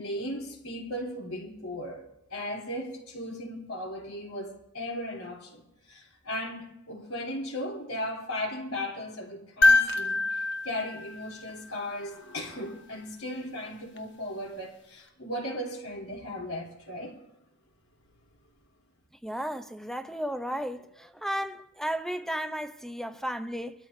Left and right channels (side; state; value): both; normal; correlation 0.61